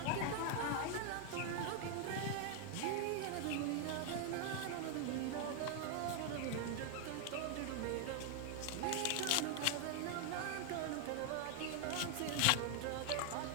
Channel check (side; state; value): both; different; correlation 0.00